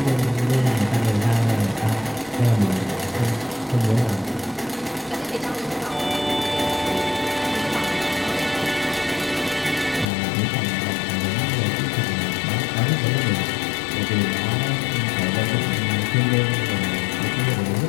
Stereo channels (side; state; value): right; drops out; at 10.1 s